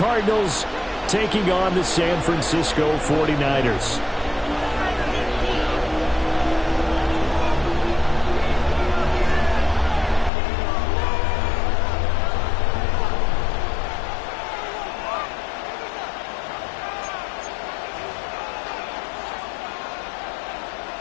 taking on the San Francisco 49ers.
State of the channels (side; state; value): right; drops out; at 10.3 s